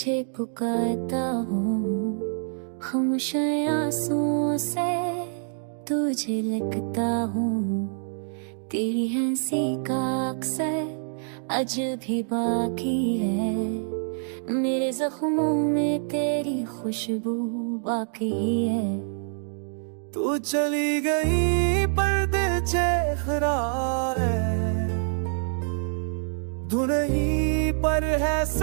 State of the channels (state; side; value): silent; left; digital silence